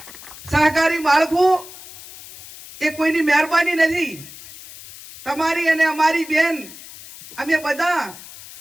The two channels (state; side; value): noise; left; hiss, 17 dB below the sound